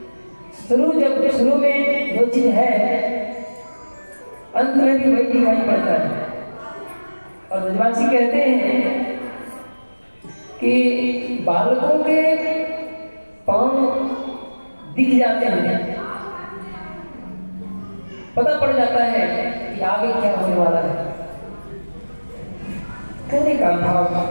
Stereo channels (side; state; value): both; inverted; correlation -1.00